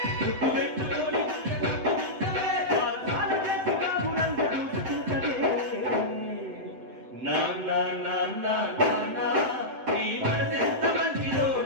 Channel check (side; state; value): left; late; 7.8 ms